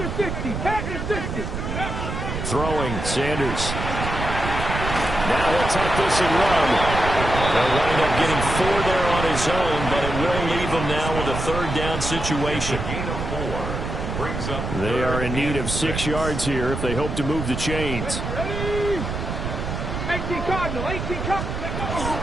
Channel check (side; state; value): right; noise; rumble, 4 dB below the sound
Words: 60, pack the 60. Throwing, Sanders. Now he'll take this and run. They'll wind up getting 4 there on his own, but it will leave him now with a 3rd down situation. They are in need of 6 yards here if they hope to move the chains. 18 Cardinal, 18